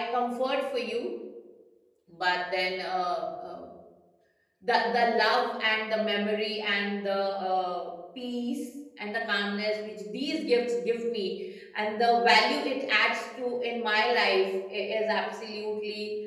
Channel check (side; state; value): both; identical; correlation 1.00